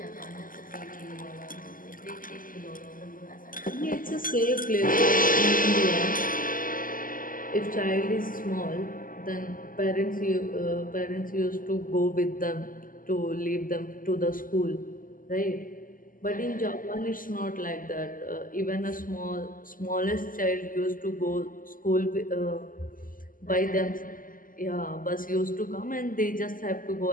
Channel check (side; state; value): right; late; 0.40 ms